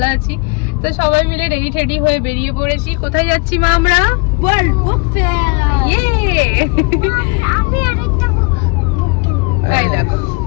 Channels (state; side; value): quieter; right; 31.1 dB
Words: আছি। তো সবাই মিলে রেডি হয়ে বেরিয়ে পড়েছি। কোথায় যাচ্ছি মা? আমরা ওয়ার্ল্ড বুক ফেয়ার। ইয়ে আমি আরেকটা বুক এই দেখো।